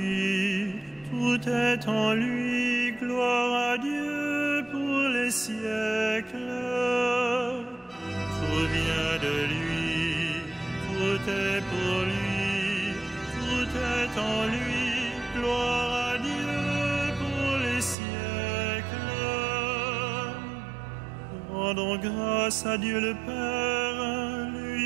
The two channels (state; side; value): drops out; left; at 17.9 s